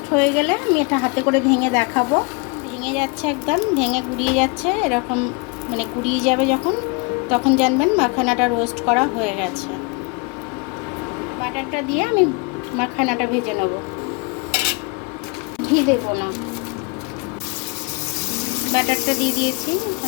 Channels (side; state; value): right; quieter; 29.6 dB